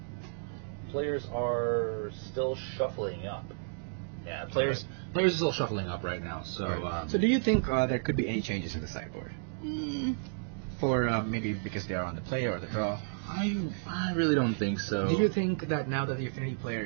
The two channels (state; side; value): silent; left; digital silence